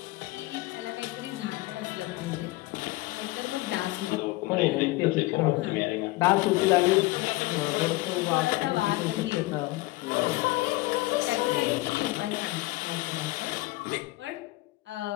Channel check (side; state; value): right; quieter; 20.2 dB